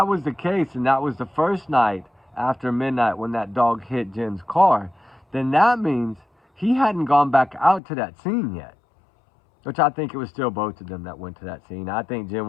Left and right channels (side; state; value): right; drops out; at 7.8 s